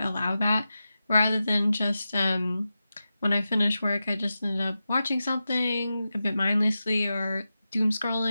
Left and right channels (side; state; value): both; inverted; correlation -0.92